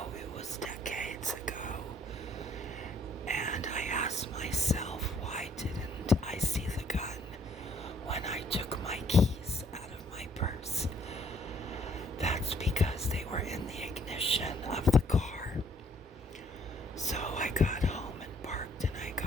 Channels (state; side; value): normal; both; correlation 0.64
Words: it was decades ago, and I asked myself, why didn't I see the gun when I took my keys out of my purse? That's because they were in the ignition of the car. So I got home and parked, and I